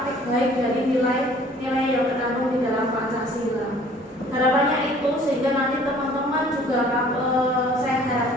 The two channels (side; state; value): both; normal; correlation 0.53